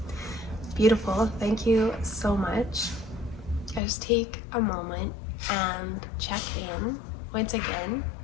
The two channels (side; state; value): right; drops out; at 3.8 s